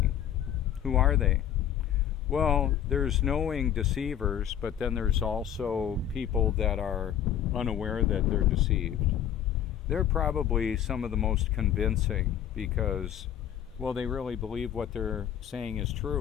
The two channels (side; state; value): right; quieter; 10.2 dB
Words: Who are they? Well, there's knowing deceivers, but then there's also people that are unaware that they're deceived. They're probably some of the most convincing because, well, they really believe what they're saying is